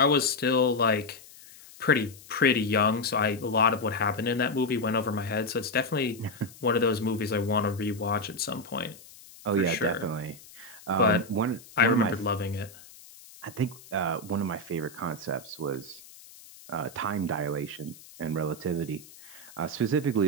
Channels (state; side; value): noise; left; hiss, 20 dB below the sound